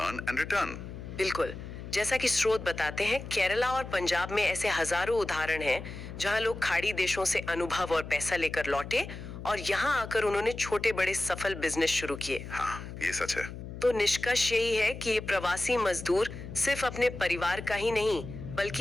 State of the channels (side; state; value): left; noise; hum, 10 dB below the sound